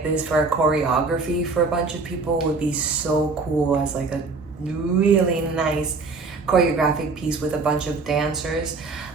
this for a choreography for a bunch of people. It would be so cool as like a really nice choreographic piece with a bunch of dancers.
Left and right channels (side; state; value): left; quieter; 4.1 dB